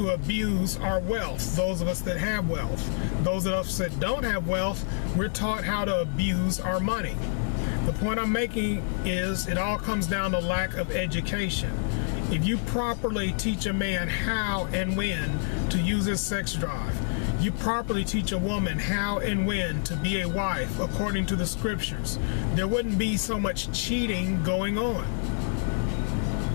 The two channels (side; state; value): right; silent; 60 dB below the other